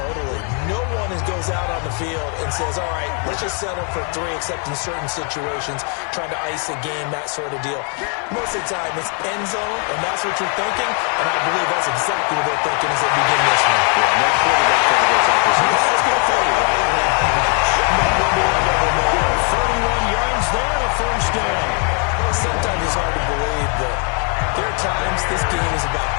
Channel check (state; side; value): quieter; right; 39.7 dB